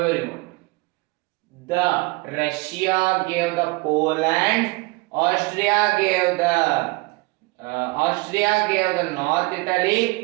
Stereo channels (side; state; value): left; quieter; 25.0 dB